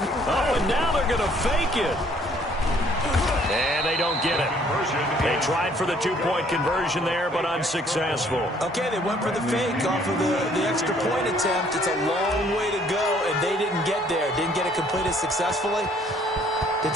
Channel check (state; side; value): normal; both; correlation 0.61